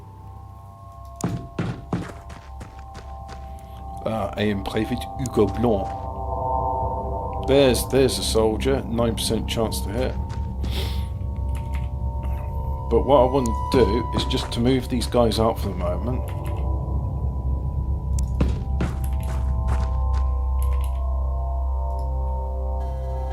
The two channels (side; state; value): both; identical; correlation 1.00